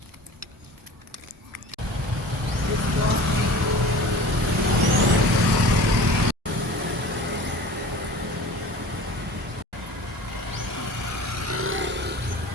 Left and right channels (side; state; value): both; normal; correlation 0.40